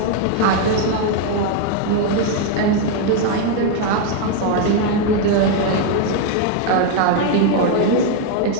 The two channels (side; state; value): both; different; correlation 0.01